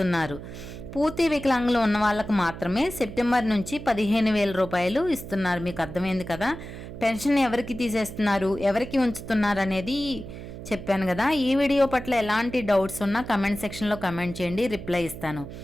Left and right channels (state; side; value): noise; right; hum, 11 dB below the sound